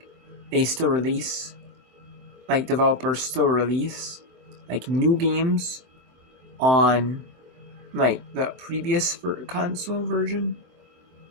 they still release, like, developers still release, like, new games on, like, the previous console version.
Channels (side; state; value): left; late; 23 ms